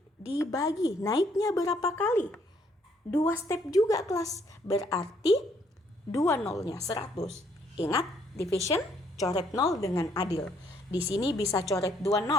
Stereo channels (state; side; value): normal; both; correlation 0.67